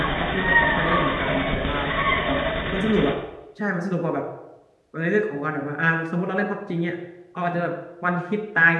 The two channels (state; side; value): identical; both; correlation 1.00